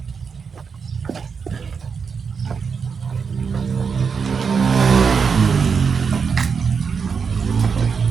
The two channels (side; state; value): left; quieter; 5.9 dB